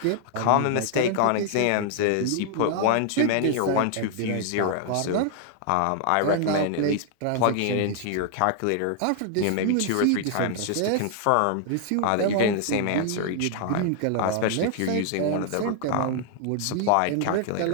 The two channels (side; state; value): both; different; correlation 0.00